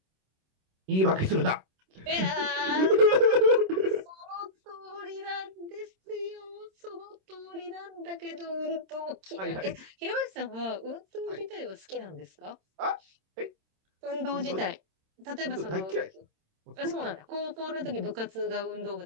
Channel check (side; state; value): left; late; 26 ms